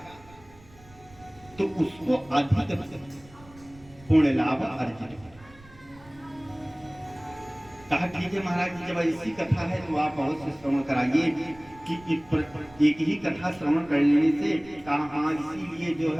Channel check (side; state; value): right; noise; rumble, 23 dB below the sound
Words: तो उसको अधिक पुण्य लाभ अर्जित होगा। कहा ठीक है महाराज जी, जब ऐसी कथा है तो आप अवश्य श्रवण कराइए कि एक ही कथा श्रवण कर लेने से कहा, इसीलिए जो